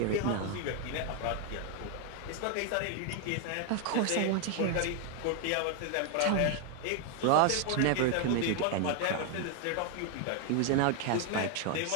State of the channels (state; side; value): different; both; correlation 0.00